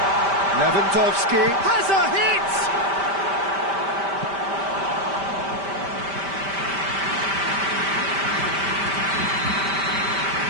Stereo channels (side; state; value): left; late; 5.1 ms